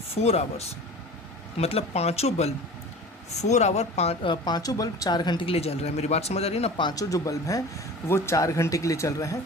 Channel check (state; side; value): normal; both; correlation 0.38